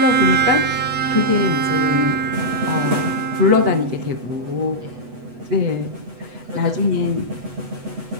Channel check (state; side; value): late; left; 8.1 ms